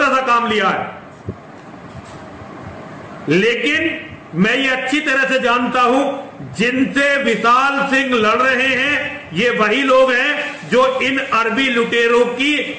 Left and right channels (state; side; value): identical; both; correlation 1.00